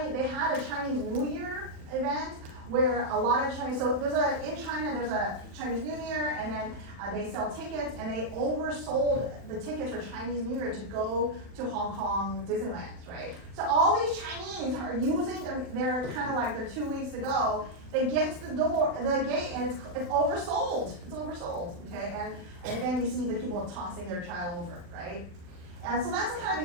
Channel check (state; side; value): late; left; 40 ms